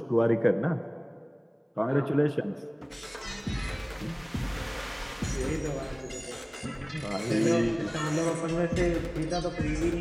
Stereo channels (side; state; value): both; identical; correlation 1.00